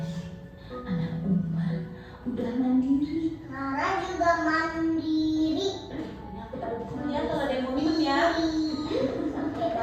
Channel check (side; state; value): both; identical; correlation 1.00